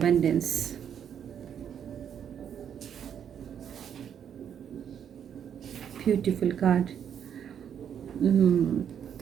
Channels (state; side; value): quieter; left; 8.6 dB